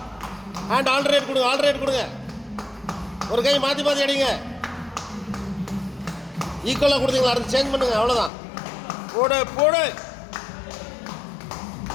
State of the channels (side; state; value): right; drops out; at 8.3 s